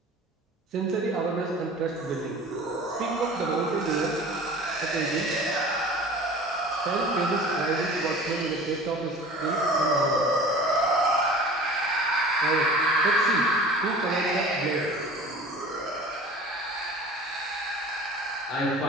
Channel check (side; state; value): both; normal; correlation 0.41